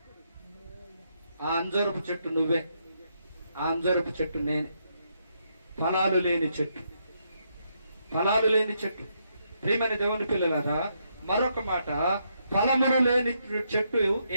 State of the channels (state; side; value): inverted; both; correlation -0.78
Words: ఆ అంజూరపు చెట్టు నువ్వే. ఆ అంజూరపు చెట్టు నేనే. ఫలాలు లేని చెట్టు. ప్రియమైన దేవుని పిల్లలారా, మరొక మాట, ఫలములు లేని చెట్టు